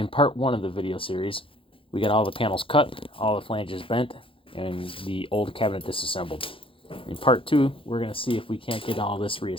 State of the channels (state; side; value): late; right; 0.26 ms